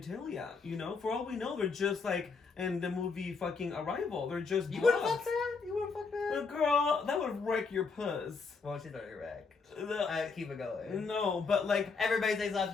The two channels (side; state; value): right; quieter; 4.8 dB